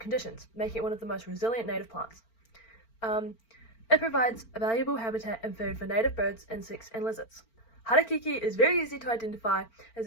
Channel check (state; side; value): late; right; 4.4 ms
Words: making it one of the most resilient native plants. It provides a valuable habitat and food for native birds, insects, and lizards. Harakeke is very easy to identify, as